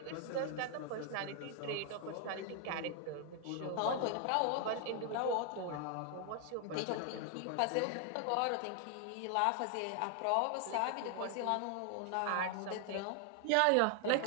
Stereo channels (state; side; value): different; both; correlation 0.00